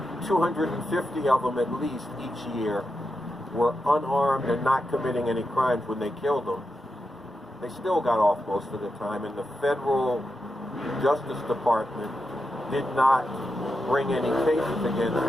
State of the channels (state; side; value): normal; both; correlation 0.87